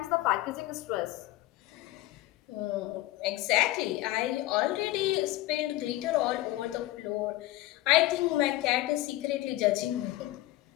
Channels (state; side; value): quieter; right; 16.9 dB